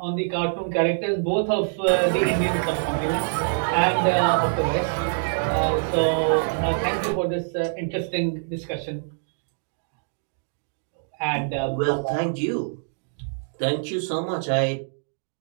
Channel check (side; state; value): left; silent; digital silence